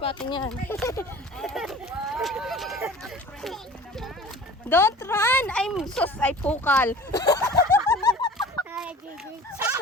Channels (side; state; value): both; normal; correlation 0.42